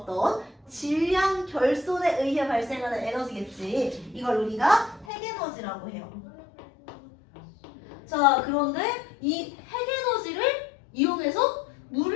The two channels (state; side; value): drops out; right; at 5.1 s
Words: 질량 결손에 의해 발생하는 에너지겠지. 이걸 우리가 핵에너지라고 해요. 자, 그런데 이 핵에너지를 이용해서